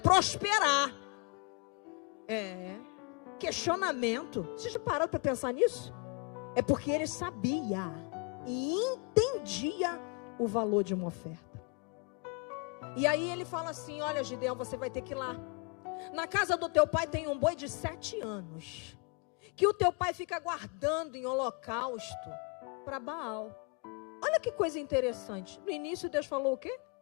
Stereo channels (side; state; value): right; quieter; 32.9 dB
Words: Questionamento. Vocês já pararam para pensar nisso? É porque ele sabia e entendia o valor de uma oferta. E aí ele fala assim: olha, Gideão, você vai ter que ir lá. Na casa do teu pai tem um boi de 7 anos, que o teu pai fica guardando em holocausto para Baal. Olha que coisa interessante. No início Deus falou o quê?